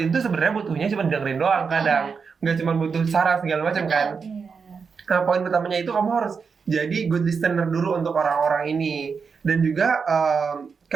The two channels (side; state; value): left; quieter; 5.6 dB